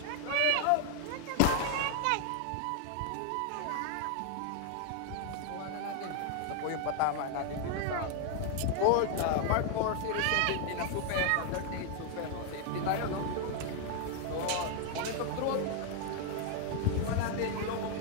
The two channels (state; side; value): different; both; correlation 0.00